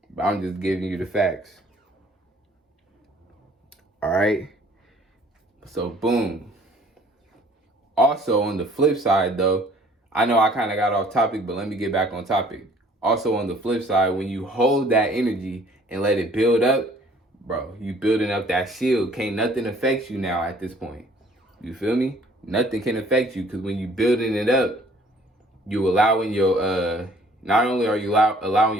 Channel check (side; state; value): both; normal; correlation 0.56